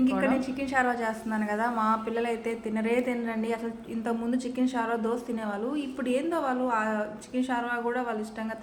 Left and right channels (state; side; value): identical; both; correlation 1.00